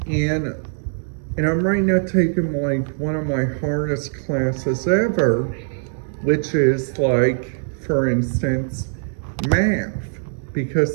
And I'm right now taking like one of my hardest classes ever, which is like, for instance, math.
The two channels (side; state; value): left; silent; 58 dB below the other